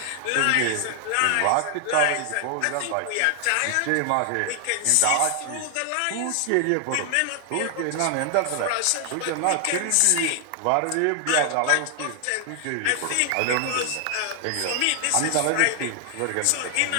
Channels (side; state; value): both; different; correlation 0.00